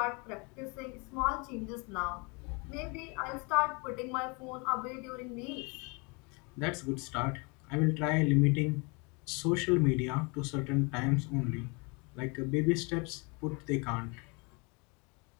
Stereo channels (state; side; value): quieter; right; 30.8 dB